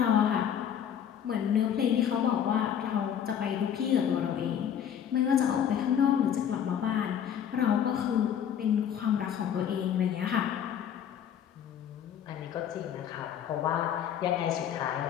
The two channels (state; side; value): quieter; right; 9.1 dB